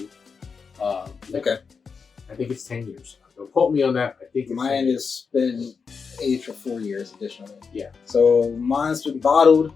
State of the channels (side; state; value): right; quieter; 5.5 dB